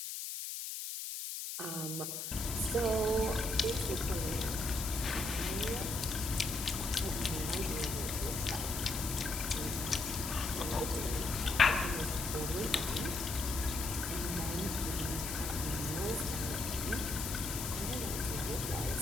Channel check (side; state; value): left; noise; hiss, 4 dB below the sound